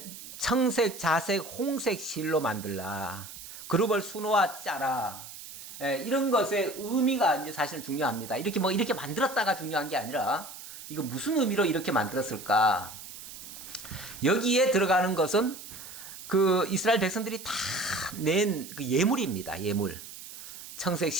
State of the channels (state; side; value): noise; right; hiss, 13 dB below the sound